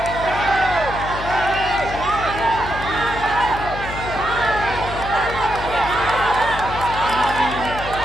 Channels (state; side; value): noise; left; hum, 9 dB below the sound